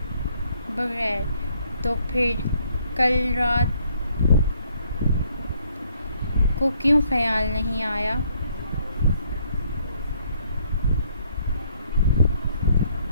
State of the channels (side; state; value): both; inverted; correlation -0.67